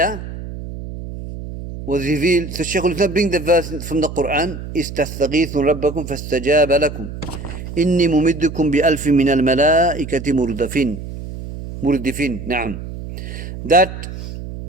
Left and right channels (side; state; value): right; noise; hum, 10 dB below the sound